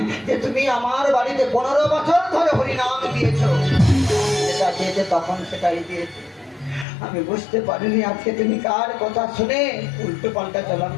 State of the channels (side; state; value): right; drops out; at 6.9 s